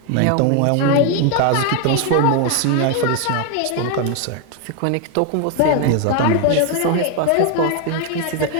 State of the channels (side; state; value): both; different; correlation 0.01